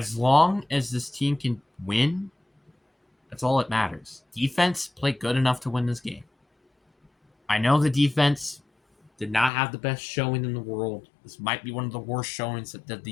long as this team can win, that's all that matters. Defense played good enough to win this game. I know the defense did not have the best showing in the world. This might be one of the worst showings that the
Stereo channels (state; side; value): drops out; right; at 9.5 s